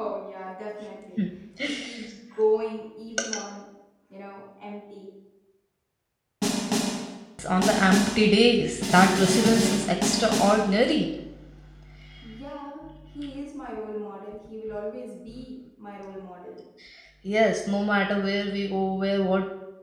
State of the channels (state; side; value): identical; both; correlation 1.00